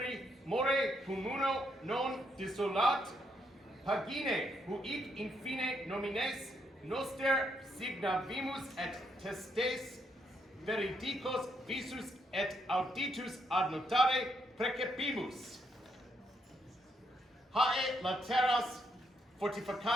more communo non dissolat, pagine huic infine nomines noster signavimus et testes veridicos visus et auditus ad notare precepimus. Hae lateras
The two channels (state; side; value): normal; both; correlation 0.76